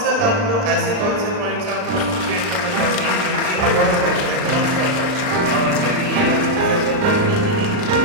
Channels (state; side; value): late; left; 39 ms